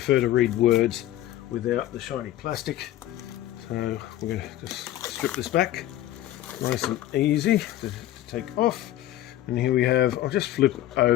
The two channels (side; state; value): right; quieter; 13.8 dB